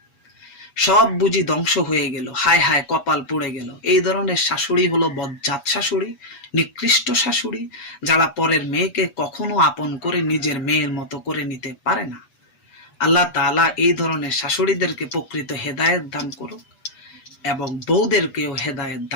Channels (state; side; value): late; right; 8.2 ms